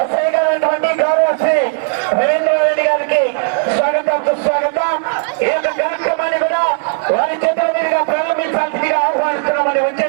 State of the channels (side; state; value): left; silent; digital silence